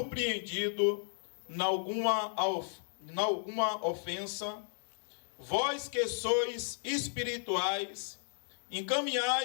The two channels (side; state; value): right; silent; digital silence